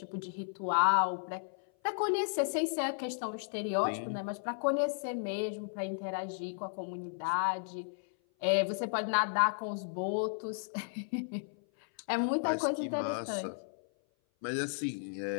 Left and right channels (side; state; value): right; silent; 55 dB below the other